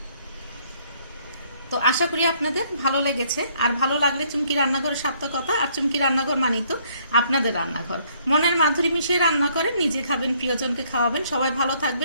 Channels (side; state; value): both; inverted; correlation -0.65